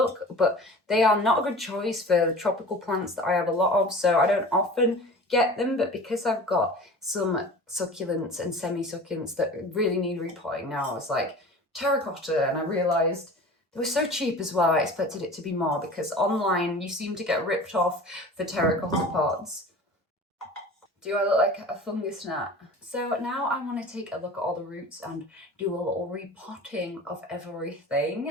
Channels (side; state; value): both; normal; correlation 0.39